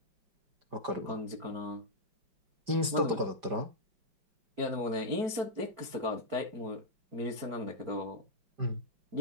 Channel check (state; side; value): late; left; 5.1 ms